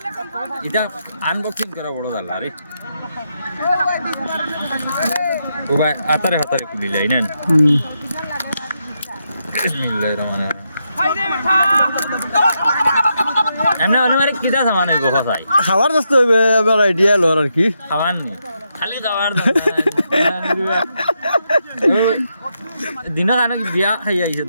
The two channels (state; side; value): inverted; both; correlation -0.82